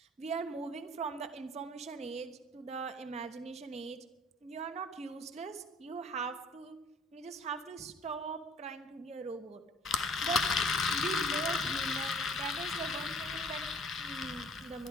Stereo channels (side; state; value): both; normal; correlation 0.54